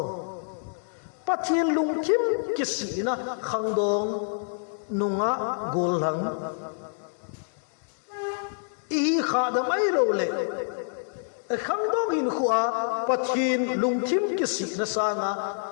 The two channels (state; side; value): silent; right; digital silence